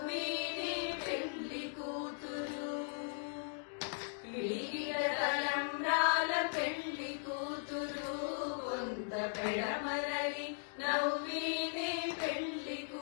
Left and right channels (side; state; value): right; silent; digital silence